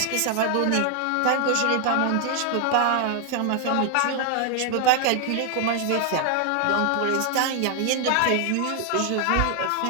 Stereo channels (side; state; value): both; different; correlation 0.00